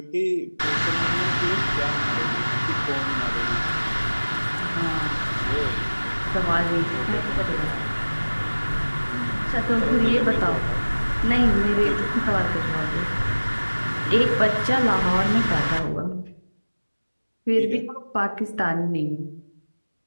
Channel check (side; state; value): both; inverted; correlation -1.00